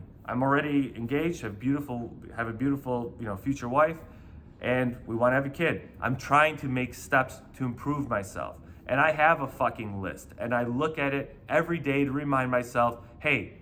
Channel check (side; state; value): both; identical; correlation 1.00